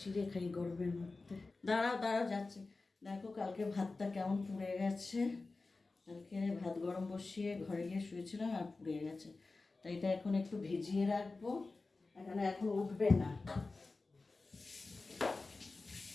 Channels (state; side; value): quieter; right; 3.6 dB